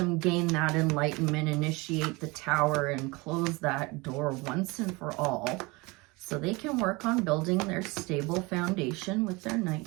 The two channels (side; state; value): left; quieter; 25.0 dB